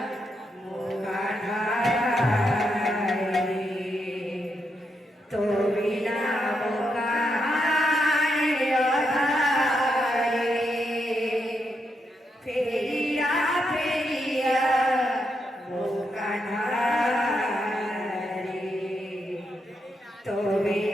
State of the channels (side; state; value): both; normal; correlation 0.82